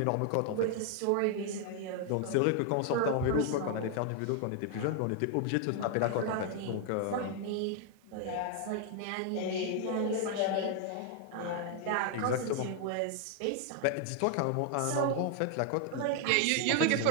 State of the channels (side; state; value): both; different; correlation 0.00